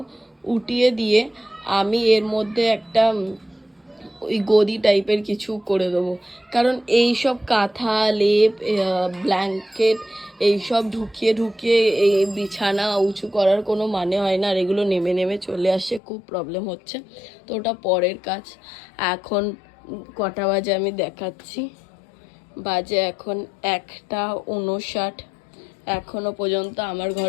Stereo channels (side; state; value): right; drops out; at 16.0 s